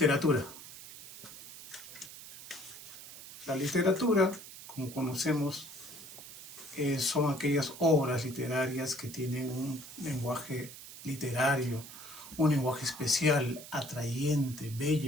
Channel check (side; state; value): right; noise; hiss, 14 dB below the sound